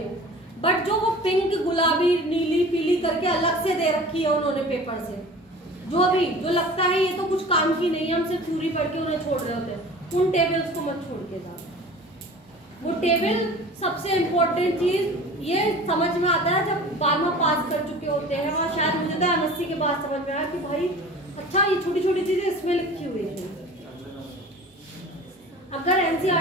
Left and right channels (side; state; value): both; normal; correlation 0.41